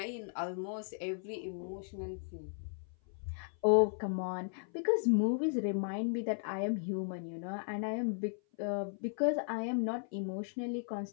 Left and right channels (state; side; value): silent; right; 54 dB below the other